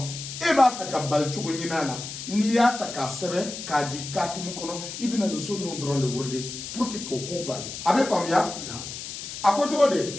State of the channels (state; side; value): noise; left; hiss, 9 dB below the sound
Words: e ba fe ka bal chugo nyinala ni ya ta ka sebe ka jikati mu kono ibina no so no dronde wurde pour que ko bali abe famya akoto de